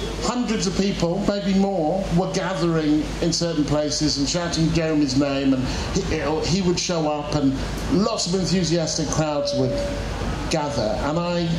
hundreds of people, maybe more, were gathering in certain places and shouting Jeremy's name, and he would show up, and lots of enthusiastic crowds would gather. And I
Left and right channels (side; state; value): both; identical; correlation 1.00